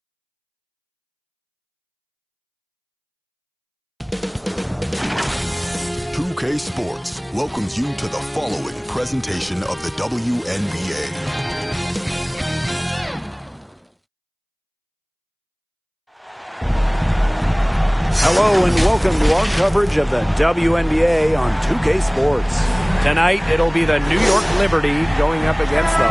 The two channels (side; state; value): both; identical; correlation 1.00